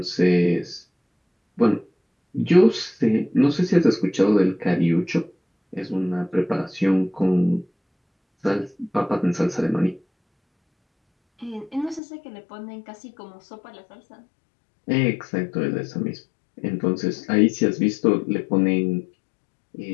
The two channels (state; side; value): drops out; right; at 12.0 s